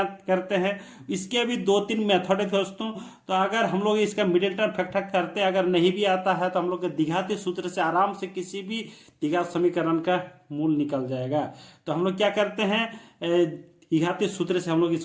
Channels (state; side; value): identical; both; correlation 1.00